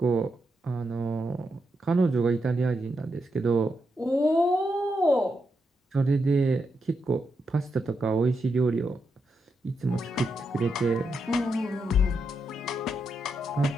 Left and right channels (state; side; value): normal; both; correlation 0.83